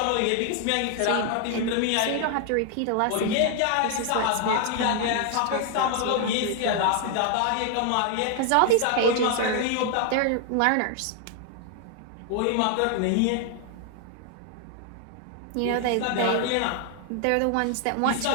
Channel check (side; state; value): both; different; correlation 0.00